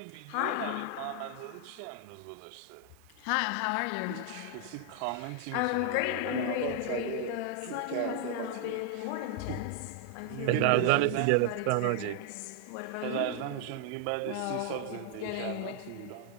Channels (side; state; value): both; different; correlation 0.00